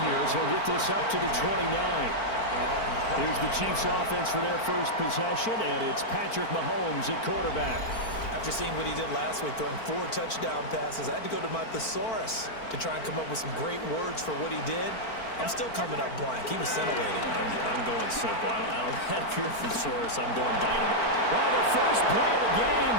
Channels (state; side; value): late; right; 4.5 ms